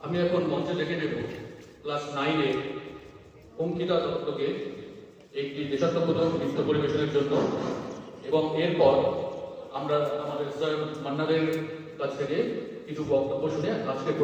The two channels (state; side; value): identical; both; correlation 1.00